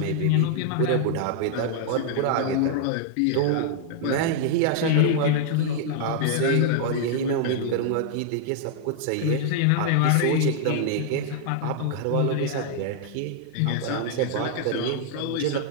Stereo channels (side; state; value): both; different; correlation -0.01